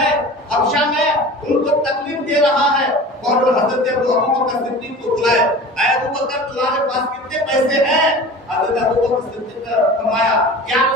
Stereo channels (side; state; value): both; normal; correlation 0.37